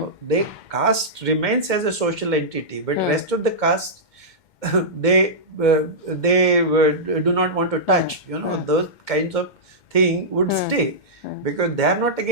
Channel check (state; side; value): late; right; 2.1 ms